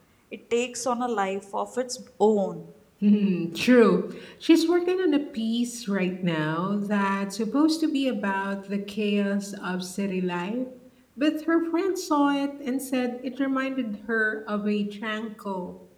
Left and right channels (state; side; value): identical; both; correlation 1.00